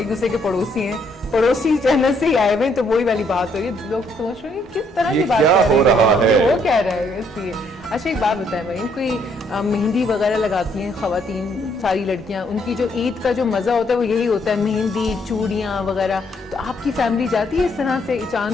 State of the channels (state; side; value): normal; both; correlation 0.70